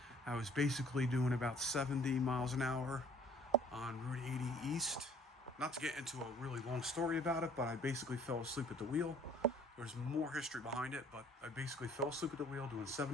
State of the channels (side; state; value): both; normal; correlation 0.54